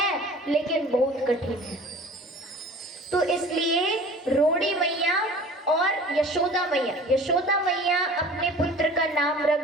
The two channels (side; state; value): both; normal; correlation 0.44